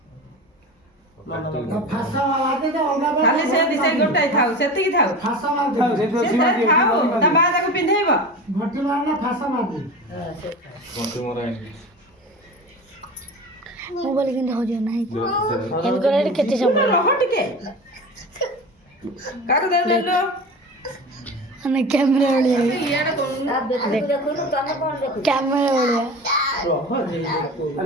फासा मारते तो अंगा खाली से दिसे गोटाई थाउ सेतिकी थाउ फासा मारते खाओ से तो सीमा दे थाउ ता बा ताको पिन्धेइबो भट्टी मारना फासा मारते पंठी मोरा मोबाइल किन हो जो नहीं इनकोरे केते समय रह टिके काको दे लो अने कैमरा ओलिया इयाडा कोन कैमरा ओलिया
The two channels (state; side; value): normal; both; correlation 0.32